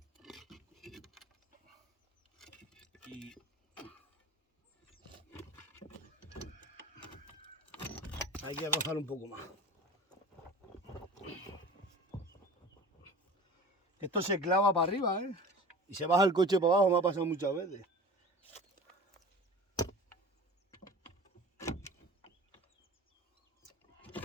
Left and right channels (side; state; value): both; normal; correlation 0.38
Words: Y Hay que rozar un poco más. Esto se clava para arriba, ¿eh? Y se baja el coche para abajo, me ha pasado muchas veces.